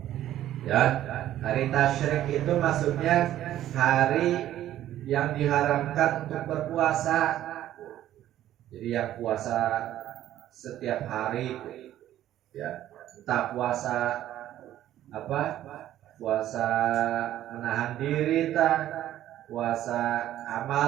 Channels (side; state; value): left; quieter; 12.7 dB